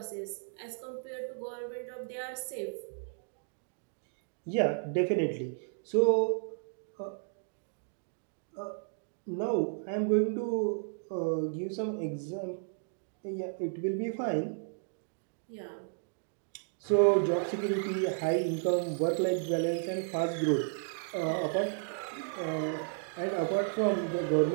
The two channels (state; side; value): silent; left; digital silence